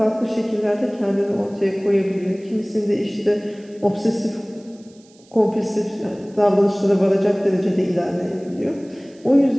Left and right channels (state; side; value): noise; right; hiss, 29 dB below the sound